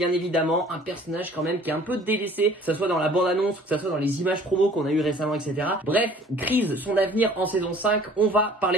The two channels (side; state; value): both; normal; correlation 0.51